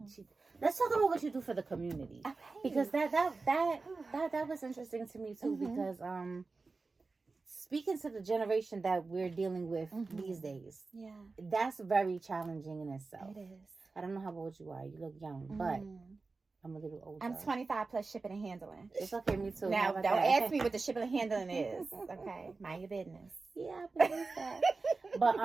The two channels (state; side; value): quieter; left; 3.9 dB